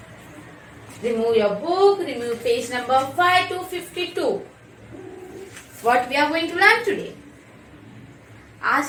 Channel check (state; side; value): identical; both; correlation 1.00